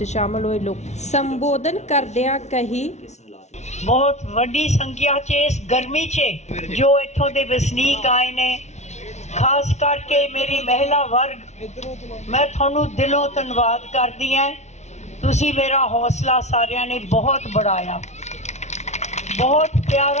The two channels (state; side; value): late; right; 0.32 ms